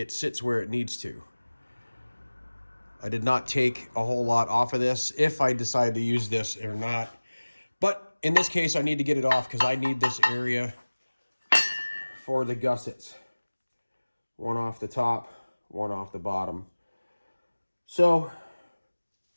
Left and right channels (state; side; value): inverted; both; correlation -1.00